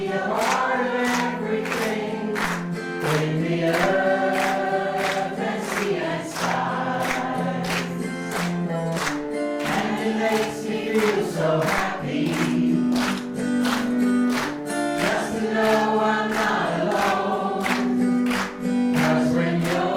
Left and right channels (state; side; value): identical; both; correlation 1.00